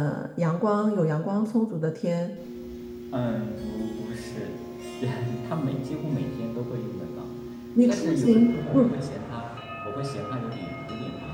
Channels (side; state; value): both; identical; correlation 1.00